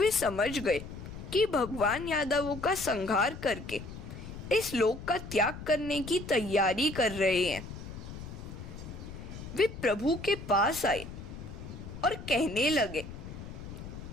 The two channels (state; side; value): noise; left; rumble, 11 dB below the sound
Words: समझ गए कि भगवान यादवों का संहार करके इस लोक का त्याग करने की तैयारी कर रहे हैं। वे प्रभु के पास आए और कहने लगे,